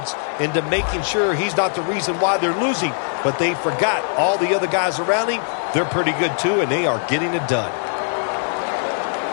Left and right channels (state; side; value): silent; right; 65 dB below the other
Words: into making sure he's not the reason why they're losing. But they forgot all the other guys around him. They're pretty good, too, and they are getting it done.